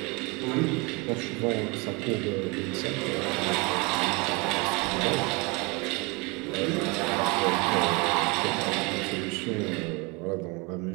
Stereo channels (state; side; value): quieter; left; 27.0 dB